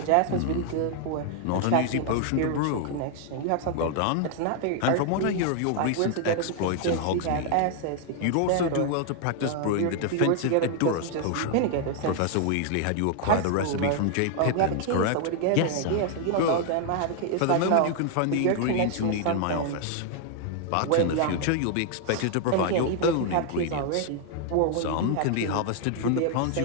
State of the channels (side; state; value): both; different; correlation 0.00